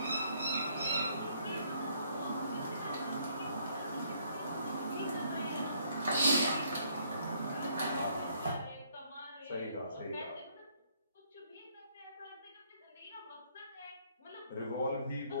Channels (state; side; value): inverted; both; correlation -0.66